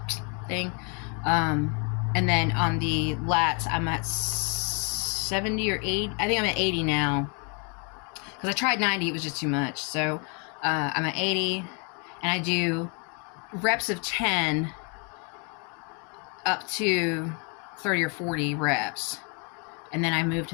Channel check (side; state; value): right; quieter; 36.2 dB